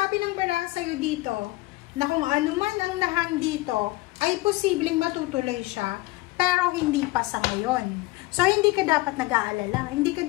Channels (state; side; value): quieter; right; 20.4 dB